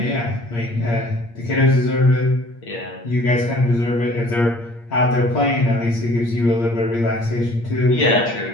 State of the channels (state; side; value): late; right; 8.6 ms